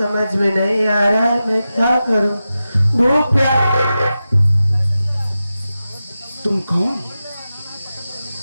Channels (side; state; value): both; inverted; correlation -0.93